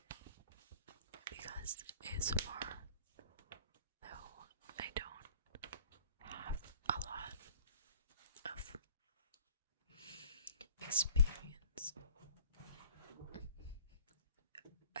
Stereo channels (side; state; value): both; inverted; correlation -0.52